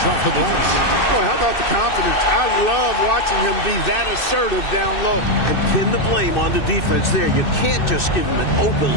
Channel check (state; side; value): late; right; 2.6 ms